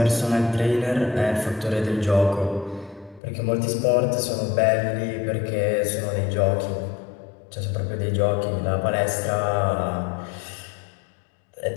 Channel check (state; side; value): drops out; right; at 3.2 s